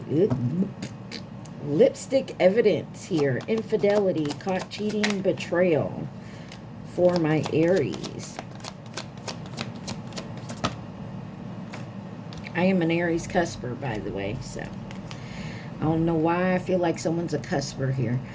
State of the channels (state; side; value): identical; both; correlation 1.00